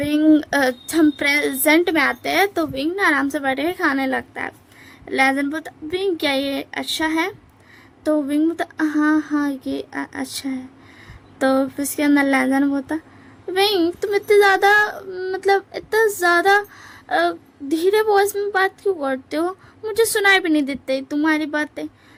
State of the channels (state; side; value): identical; both; correlation 1.00